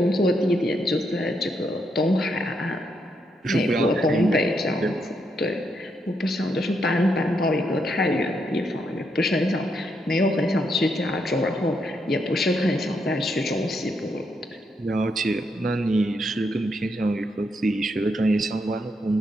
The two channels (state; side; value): normal; both; correlation 0.78